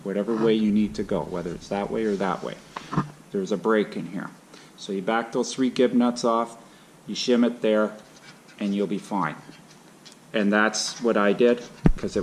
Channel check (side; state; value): both; identical; correlation 1.00